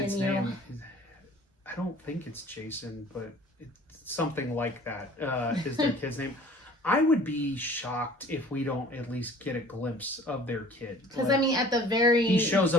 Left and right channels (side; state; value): both; normal; correlation 0.49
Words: name. I don't think it's Jason, but it's something like that. Is their kid's name? I would be shocked if we don't at least get a glimpse of their kid. Because I mean, at the very he shows